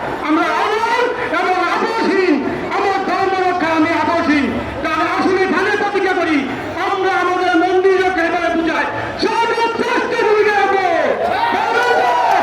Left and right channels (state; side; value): identical; both; correlation 1.00